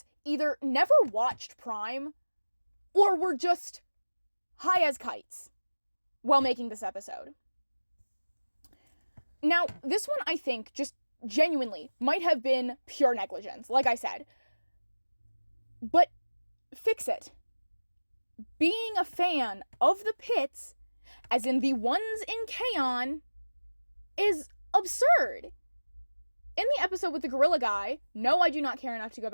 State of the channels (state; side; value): inverted; both; correlation -1.00